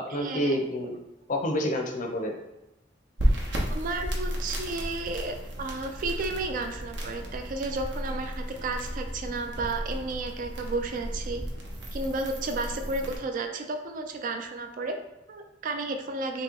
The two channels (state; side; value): normal; both; correlation 0.46